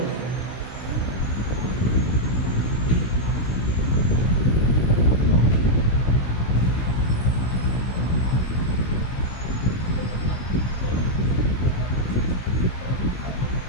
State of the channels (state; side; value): late; right; 16 ms